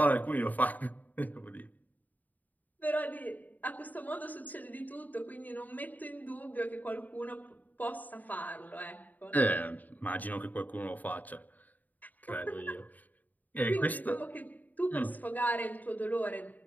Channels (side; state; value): right; late; 0.081 ms